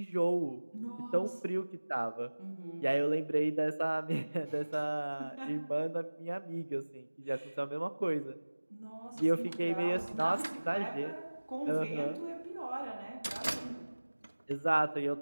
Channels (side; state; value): both; inverted; correlation -1.00